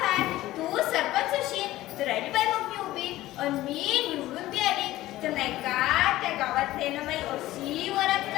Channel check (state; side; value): quieter; right; 16.1 dB